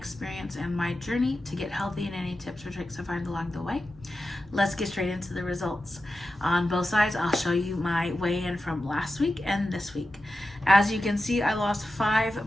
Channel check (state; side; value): normal; both; correlation 0.92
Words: and my journey to get healthy and any tips or tricks I find along the way. Let's get straight into the results. On both sides, I'll show you my weigh-in from last week and this week. As you can see, I lost